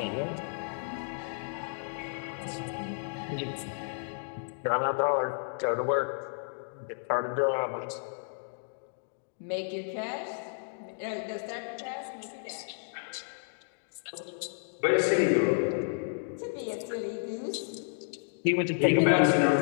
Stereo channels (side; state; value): right; silent; digital silence